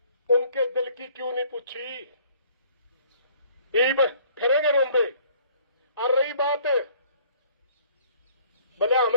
उनके दिल की क्यों नहीं पूछी? फिरेंगे रोंदे। और रही बात भले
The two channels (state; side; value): inverted; both; correlation -0.57